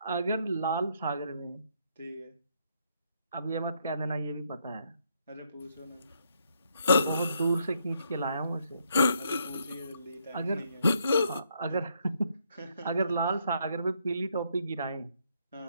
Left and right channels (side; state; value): both; inverted; correlation -0.73